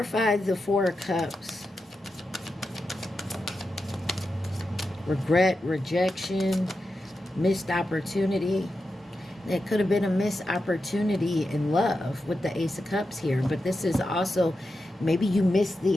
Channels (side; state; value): both; normal; correlation 0.89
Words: the Four of Cups. Regret, rejection, missed opportunity. It could have been a missed opportunity in love with the Ace of Cups here. But this is also, maybe you missed